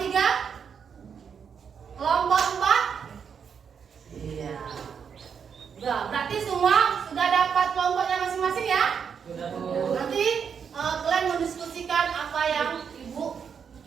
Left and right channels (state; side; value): quieter; left; 6.9 dB